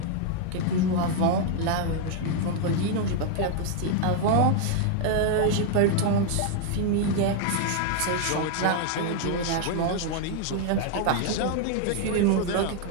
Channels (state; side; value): different; both; correlation 0.00